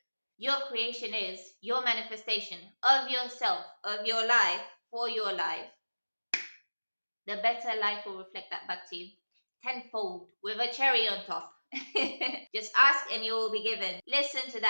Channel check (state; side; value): inverted; both; correlation -1.00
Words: your creation is, your manifestation of yourself, of your life, for your life, the better life will reflect that back to you tenfold with a cherry on top. Just ask and you will be given. Listen to